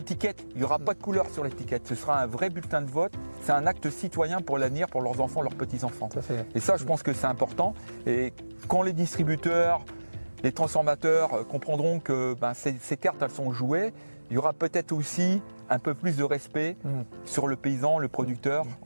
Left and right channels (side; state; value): both; inverted; correlation -1.00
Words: Il n'y aura pas de couleur sur l'étiquette. Ce sera un vrai bulletin de vote. C'est un acte citoyen pour l'avenir, pour leurs enfants, leurs petits-enfants. Et ça, je pense que c'est important. Et quand les distributeurs, les transformateurs comprendront que ben, ces cartes, elles sont jouées, il y aura peut-être aussi un peu plus de respect sur le paysan, le producteur,